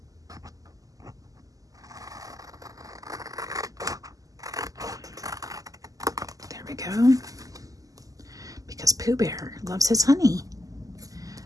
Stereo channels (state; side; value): late; left; 0.17 ms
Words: there we go. Because Pooh Bear loves his honey.